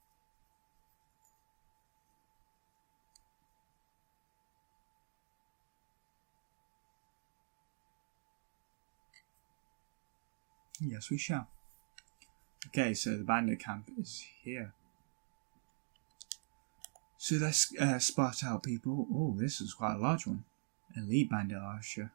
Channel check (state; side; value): silent; left; digital silence